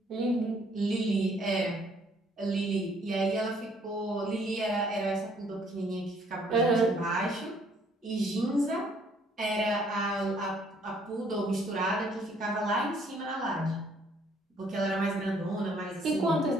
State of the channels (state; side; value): normal; both; correlation 0.63